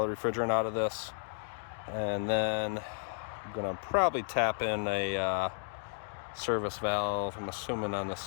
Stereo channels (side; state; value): right; silent; digital silence